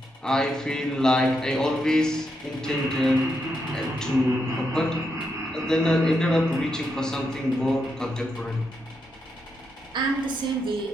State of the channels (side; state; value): both; normal; correlation 0.82